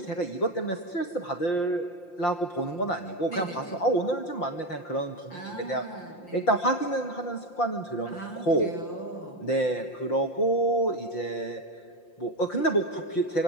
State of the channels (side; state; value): right; late; 5.7 ms